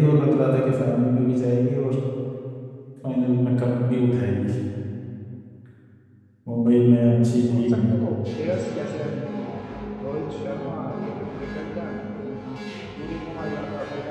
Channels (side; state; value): both; identical; correlation 1.00